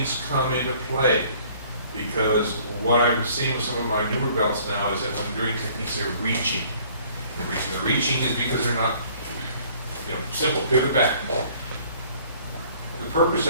come into play. Because what I'm seeing with some of my newer belts now is that when they're doing techniques, they're reaching. The reaching is because they're not, you know, simple, pivot back. The purpose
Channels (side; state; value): both; inverted; correlation -0.56